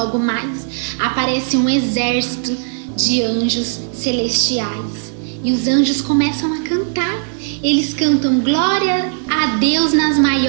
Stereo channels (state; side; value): silent; left; digital silence